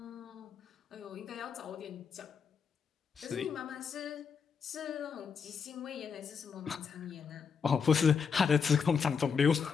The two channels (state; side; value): quieter; right; 6.2 dB